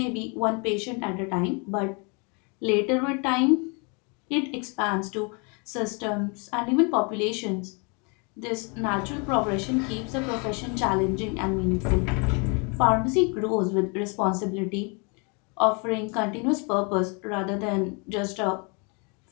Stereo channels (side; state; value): right; quieter; 33.6 dB